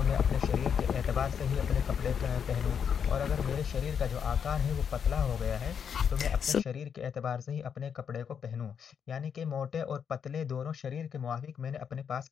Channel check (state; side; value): quieter; right; 7.4 dB